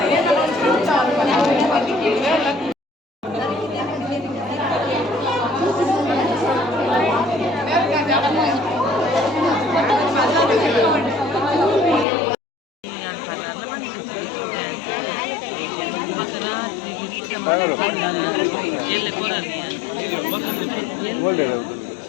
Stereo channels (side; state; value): right; drops out; at 12.1 s